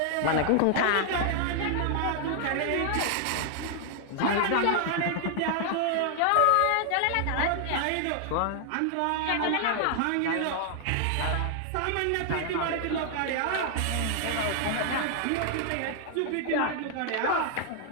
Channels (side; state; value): both; different; correlation 0.00